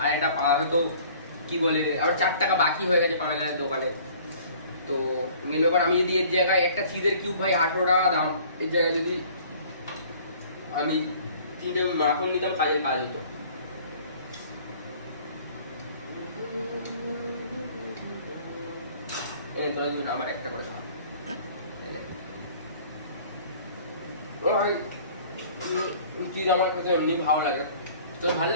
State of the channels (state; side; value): inverted; both; correlation -0.52